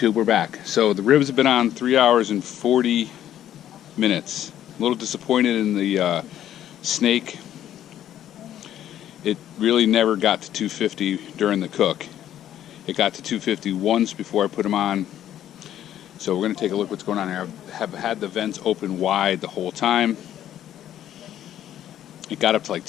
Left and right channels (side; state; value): right; quieter; 11.4 dB